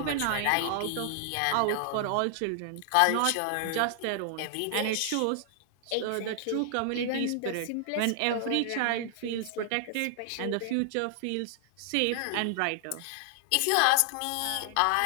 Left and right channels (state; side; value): different; both; correlation 0.00